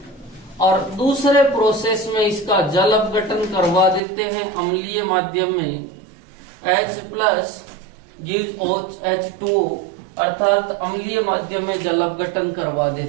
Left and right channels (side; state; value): left; drops out; at 4.0 s